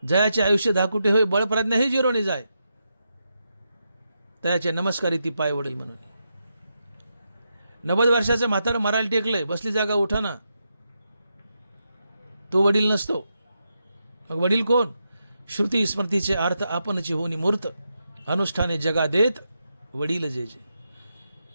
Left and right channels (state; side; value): inverted; both; correlation -0.85